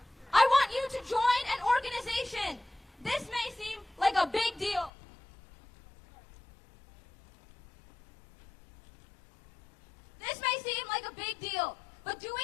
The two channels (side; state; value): right; drops out; at 4.9 s